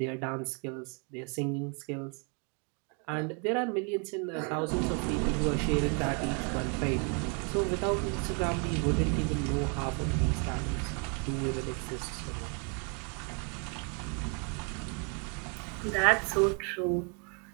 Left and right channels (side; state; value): left; quieter; 36.8 dB